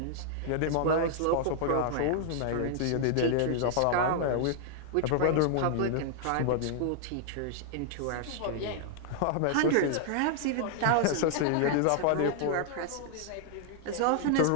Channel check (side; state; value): both; different; correlation 0.00